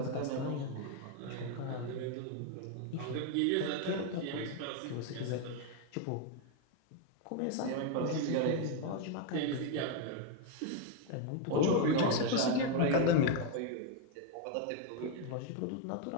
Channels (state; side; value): different; both; correlation 0.01